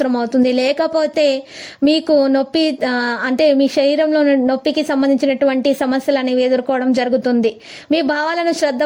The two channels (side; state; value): both; identical; correlation 1.00